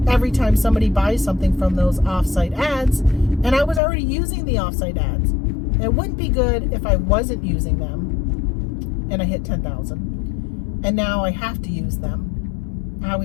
every time somebody buys something from those offsite ads. And I was already using the offsite ads. It wouldn't be good if I wasn't using them and I hit 10,000. And now I have to use them. I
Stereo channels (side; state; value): right; drops out; at 3.8 s